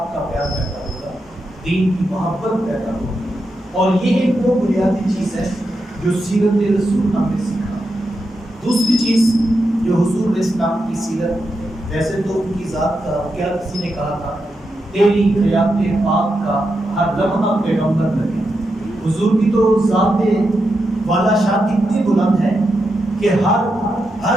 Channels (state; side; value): normal; both; correlation 0.86